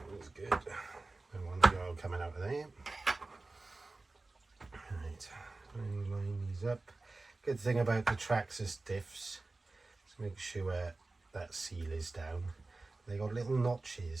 good. Don't want the oil coming out of there. Right, line these up. Good thing about the Traxxas diffs, let's make sure that seal is down. They got little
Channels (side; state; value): left; quieter; 3.3 dB